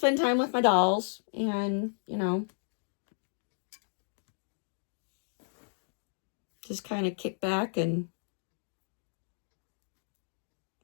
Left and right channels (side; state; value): right; silent; digital silence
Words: time with my dolls and, just kind of kick back and